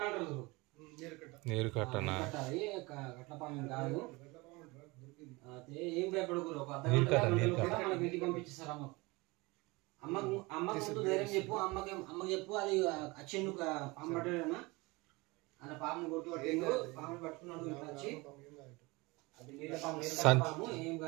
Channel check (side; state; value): left; quieter; 24.2 dB